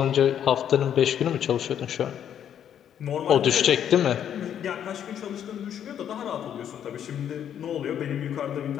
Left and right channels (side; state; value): right; quieter; 9.5 dB